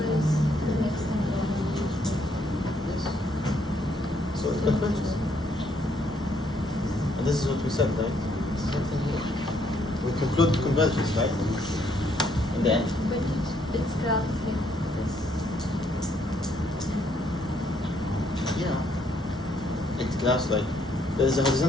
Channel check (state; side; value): normal; both; correlation 0.70